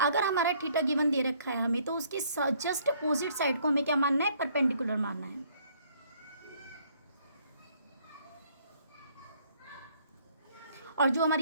हमारा थीटा गिवन दे रखा है हमें तो उसकी जस्ट अपोजिट साइड को हमें क्या मानना है? परपेंडिकुलर मानना है. और जो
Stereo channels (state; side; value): inverted; both; correlation -0.63